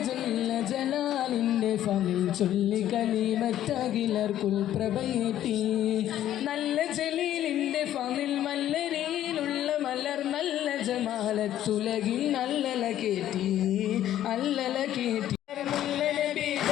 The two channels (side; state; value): right; quieter; 12.1 dB